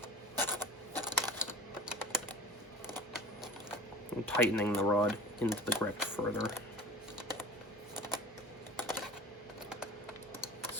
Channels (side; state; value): both; normal; correlation 0.37